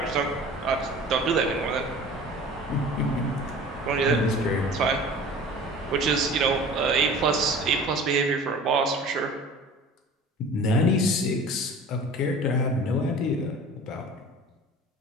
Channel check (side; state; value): both; normal; correlation 0.42